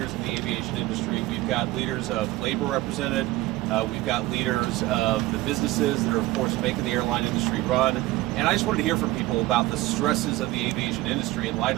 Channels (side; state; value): left; quieter; 18.4 dB